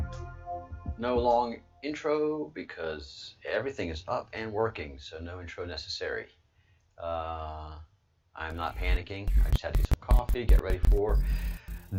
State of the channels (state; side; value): identical; both; correlation 1.00